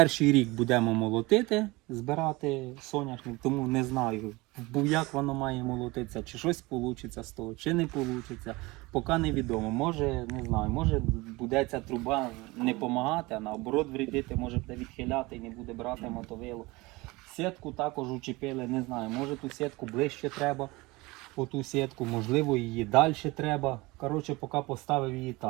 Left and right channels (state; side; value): quieter; left; 22.7 dB